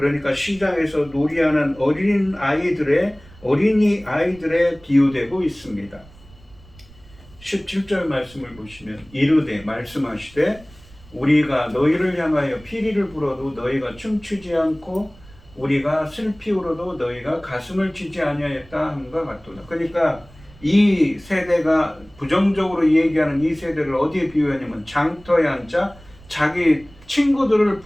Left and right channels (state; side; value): noise; right; rumble, 24 dB below the sound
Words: 시장에서 놀이하는 어린이 아이들에 비유되고 있습니다. 17절 말씀을 보시면 이르되 말씀하시되 우리가 너희를 향하여 피리를 불어도 너희가 춤추지 않고 우리가 슬피 울어도 너희가 가슴을 치지 아니하였다 함과 같도다. 그러니까 이 세대가 부정적으로 얘기하는 이 세대를 어디에 비유하냐면 장터에 앉아 자기 친구들을